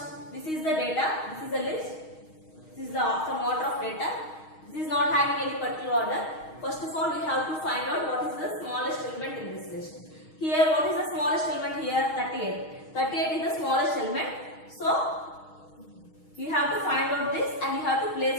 this is the data, this is the list, this is some order of data. This is not having any particular order. First of all, we have to find out what is the smallest element in this list. Here, what is the smallest element here? 38. 38 is the smallest element. So, you have to find out this and you have to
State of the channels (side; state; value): right; late; 6.4 ms